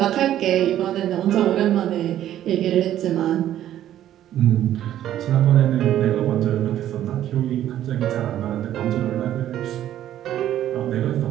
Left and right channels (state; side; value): quieter; left; 12.0 dB